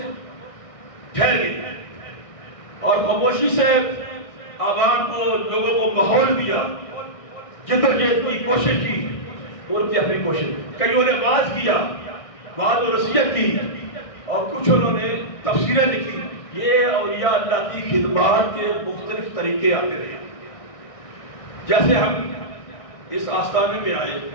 ٹھہر گئے اور خاموشی سے عوام کو، لوگوں کو ماحول دیا، جدوجہد کی کوشش کی، ان کی اپنی کوشش. کئیوں نے واعظ کیا، وعظ و نصیحت کی، اور کچھ انہوں نے تفسیریں لکھی. یہ اولیاء اللہ کی خدمات کے مختلف طریقے آتے رہے. جیسے ہم اس آستانے میں آئے،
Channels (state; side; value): late; right; 1.6 ms